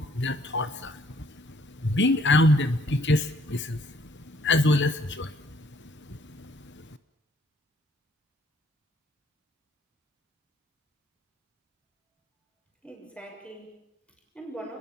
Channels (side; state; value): both; normal; correlation 0.64